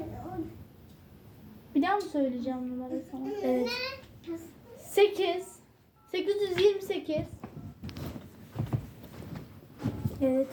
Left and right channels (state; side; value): identical; both; correlation 1.00